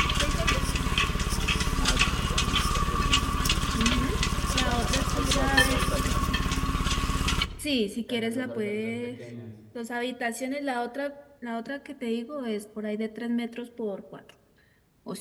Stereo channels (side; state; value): both; identical; correlation 1.00